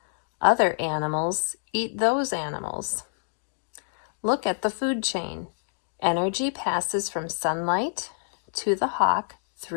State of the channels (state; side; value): silent; right; digital silence